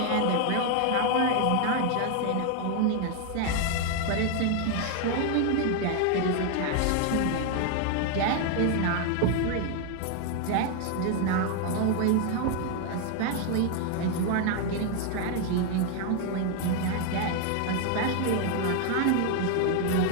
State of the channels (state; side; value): different; both; correlation 0.01